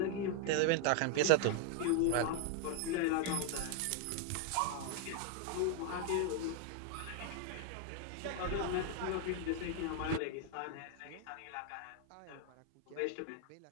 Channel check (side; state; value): both; different; correlation 0.00